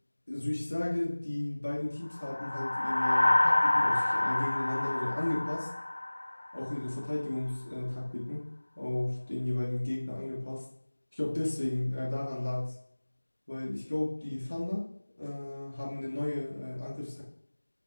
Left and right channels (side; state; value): both; inverted; correlation -1.00